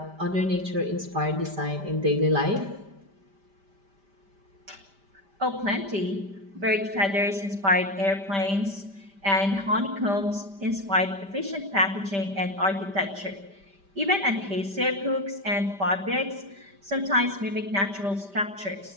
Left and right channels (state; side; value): late; left; 5.1 ms